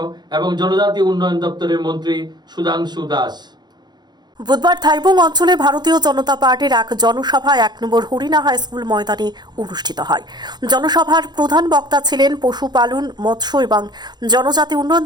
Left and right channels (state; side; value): late; left; 0.21 ms